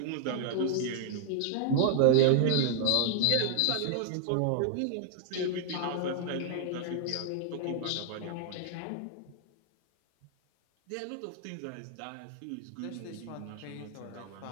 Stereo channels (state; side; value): different; both; correlation 0.00